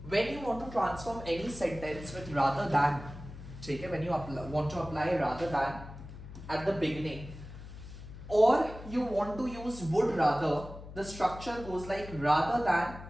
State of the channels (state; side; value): noise; left; hum, 13 dB below the sound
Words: when you want to transform any sentence with rather than, ठीक है, when you want to apply rather than at the beginning, or you want to use would rather, the structure goes like rather than,